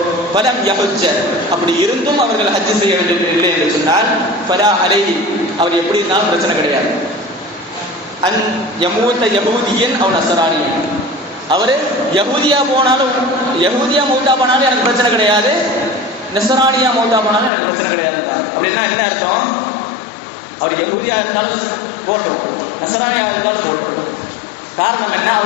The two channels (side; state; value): right; drops out; at 17.5 s